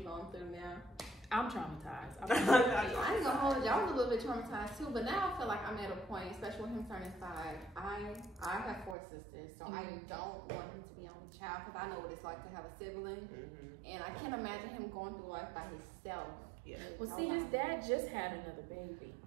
through now? I'm traumatized. I ain't gonna hold you. I was a little bit traumatized too, but now I feel like I'm at a point, especially with him turning 5. I have 4 sisters, so I don't want him to be only child because I know what it's like to have a sibling, and I can't imagine him going through life by himself. Well, see, his dad just had another baby,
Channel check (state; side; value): drops out; left; at 9.0 s